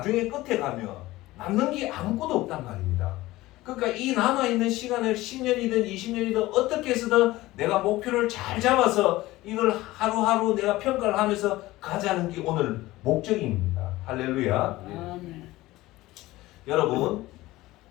끝에 가면 남는 게 아무것도 없단 말입니다. 그러니까 이 남아있는 시간을 10년이든 20년이든 어떻게 해서든 내가 목표를 잘 잡아서 이걸 하루하루 내가 평가를 하면서 가자는 게 오늘 목적입니다. 할렐루야. 여러분,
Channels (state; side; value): quieter; right; 18.0 dB